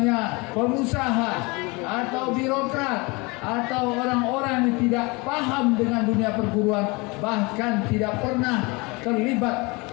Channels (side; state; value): right; quieter; 26.5 dB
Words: pengusaha atau birokrat atau orang-orang yang tidak paham dengan dunia perguruan, bahkan tidak pernah terlibat